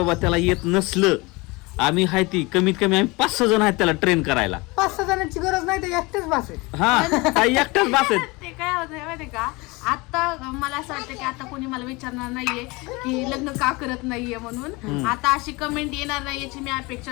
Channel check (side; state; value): right; quieter; 24.7 dB